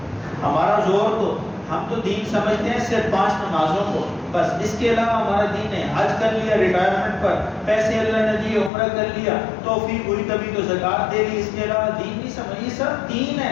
ہمارا زور تو ہم تو دین سمجھتے ہیں صرف 5 نمازوں کو، بس اس کے علاوہ ہمارا دین ہے۔ حج کر لیا ریٹائرمنٹ پر، پیسے اللہ نے دیے، عمرہ کر لیا، توفیق ہوئی کبھی تو زکوٰۃ دے دی، اس کے علاوہ دین نہیں سمجھ، یہ سب دین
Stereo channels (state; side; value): drops out; right; at 8.7 s